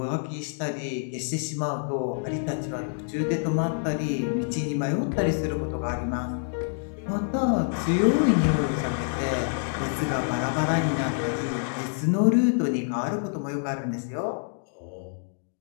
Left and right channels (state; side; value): silent; right; digital silence